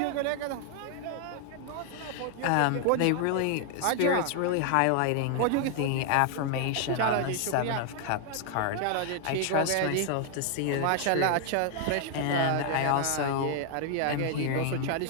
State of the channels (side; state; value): both; different; correlation 0.00